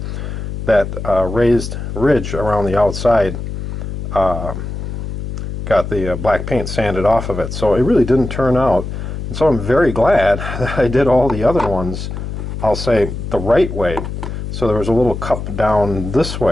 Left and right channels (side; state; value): left; noise; hum, 6 dB below the sound